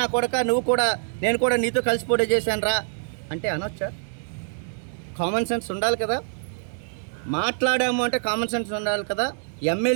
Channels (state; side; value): silent; left; digital silence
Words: కొడక నేను కూడా నీతో కలిసి పోటీ చేశాను రా అంటే అనొచ్చా? కామన్ సెన్స్ ఉండాలి కదా. మాట్లాడాము అంటే కామన్ సెన్స్ ఉండాలి కదా.